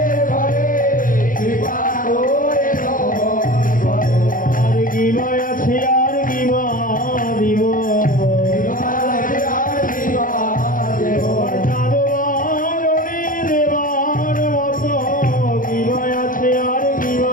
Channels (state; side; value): late; right; 0.40 ms